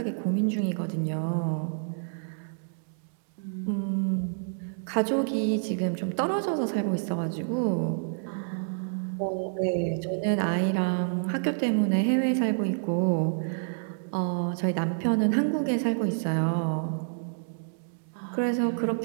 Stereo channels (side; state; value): left; silent; digital silence